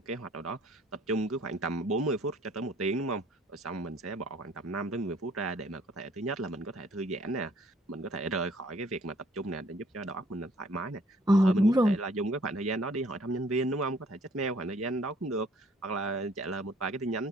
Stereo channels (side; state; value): both; normal; correlation 0.59